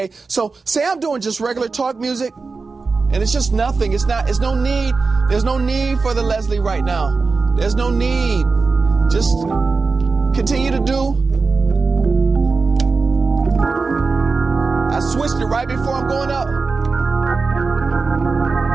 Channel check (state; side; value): quieter; left; 4.3 dB